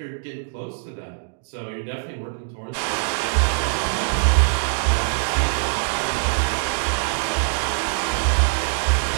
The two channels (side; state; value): left; silent; digital silence